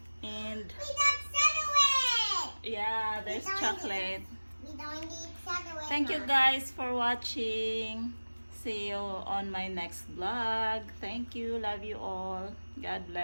And We got chocolate. yeah, there's We don't chocolate. We don't need chocolate. Thank you Mom. guys for watching. See you on my next vlog. Thank you. Love you all. God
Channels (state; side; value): inverted; both; correlation -1.00